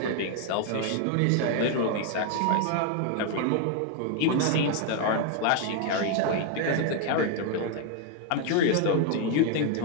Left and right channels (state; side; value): different; both; correlation 0.01